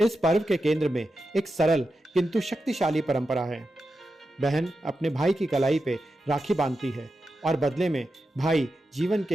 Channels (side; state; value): both; normal; correlation 0.90